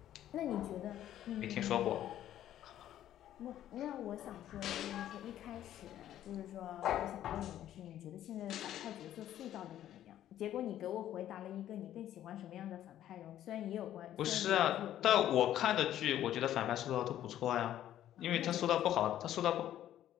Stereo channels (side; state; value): right; quieter; 12.0 dB